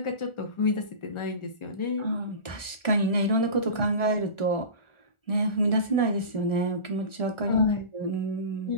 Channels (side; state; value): right; late; 1.4 ms